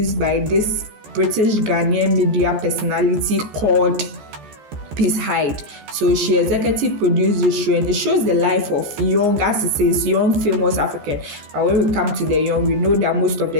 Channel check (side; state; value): left; late; 14 ms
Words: by this British Ghanaian media personality called Hyde. So she executive produced the show, and it shows the life of young, as it says, young famous African. But when we come to the young, we know that most of